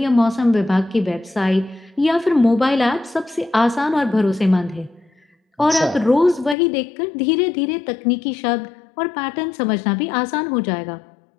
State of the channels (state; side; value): drops out; right; at 6.6 s